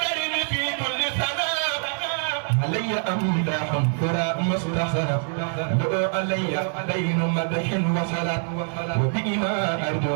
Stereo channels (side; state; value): left; silent; 57 dB below the other